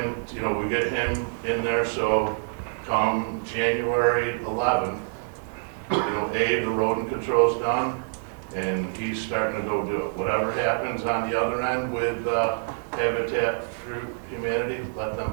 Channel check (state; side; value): silent; left; digital silence